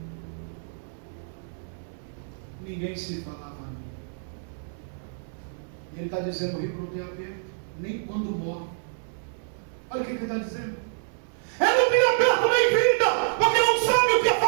se falava a mim. E ele está dizendo: o rico não tem aperto, nem quando morre. Olha o que ele está dizendo. Ele não tem aperto nem vida, porque não sabe o que é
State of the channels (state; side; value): silent; left; digital silence